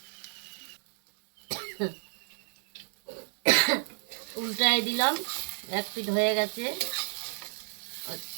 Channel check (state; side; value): silent; left; 57 dB below the other